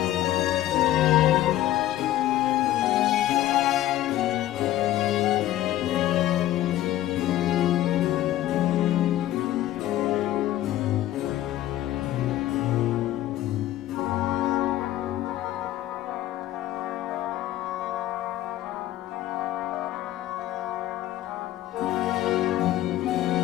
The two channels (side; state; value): right; quieter; 14.0 dB